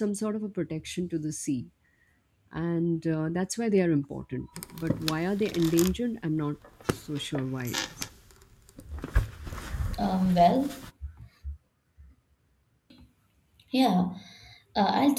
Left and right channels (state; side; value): identical; both; correlation 1.00